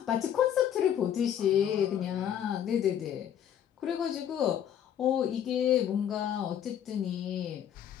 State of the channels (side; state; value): right; quieter; 9.7 dB